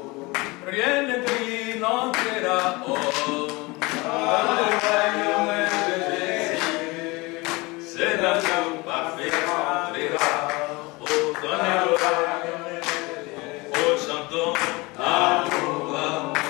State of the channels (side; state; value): right; quieter; 24.2 dB